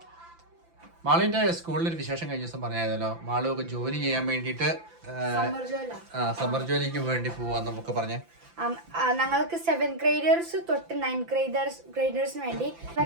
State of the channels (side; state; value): left; late; 5.9 ms